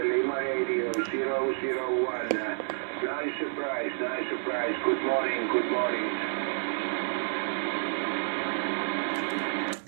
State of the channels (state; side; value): silent; left; digital silence